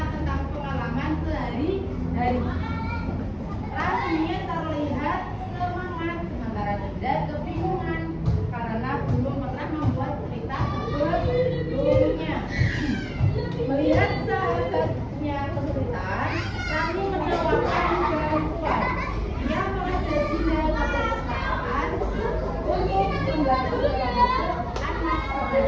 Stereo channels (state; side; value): identical; both; correlation 1.00